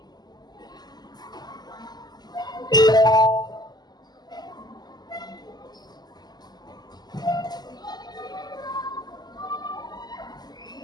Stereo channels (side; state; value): right; late; 0.20 ms